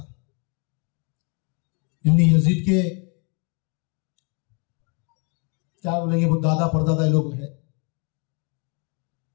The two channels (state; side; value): quieter; right; 35.7 dB